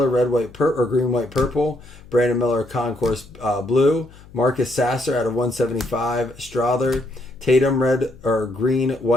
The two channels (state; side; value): noise; left; hum, 22 dB below the sound